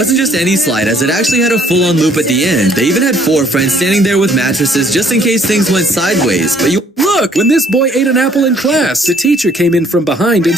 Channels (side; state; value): both; normal; correlation 0.61